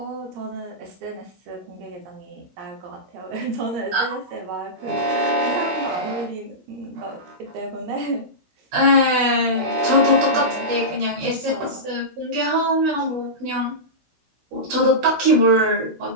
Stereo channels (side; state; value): left; late; 16 ms